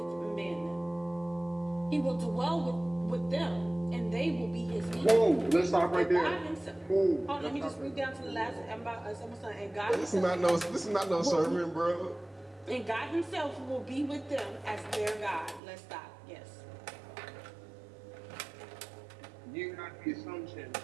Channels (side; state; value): left; drops out; at 15.6 s